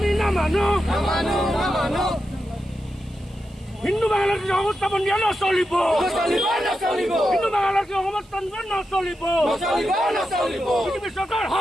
না মানো হিন্দু বাংলাদেশ অবস্থাপন নিয়ে নচলিব হিন্দু বাংলাদেশ অবস্থান নচলিব বিজেপি সরকার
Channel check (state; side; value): noise; right; hiss, 29 dB below the sound